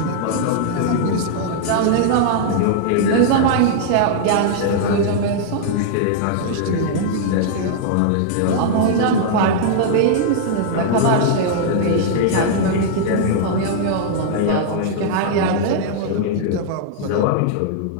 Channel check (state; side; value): different; both; correlation -0.01